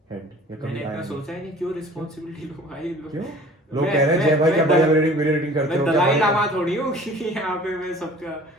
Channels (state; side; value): normal; both; correlation 0.47